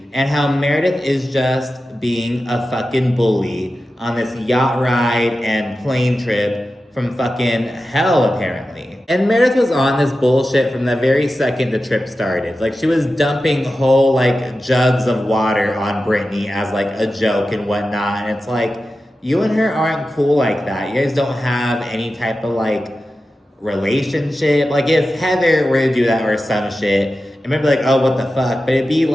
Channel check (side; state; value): both; normal; correlation 0.93